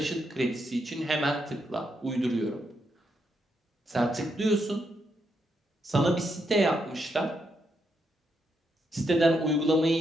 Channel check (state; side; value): normal; both; correlation 0.80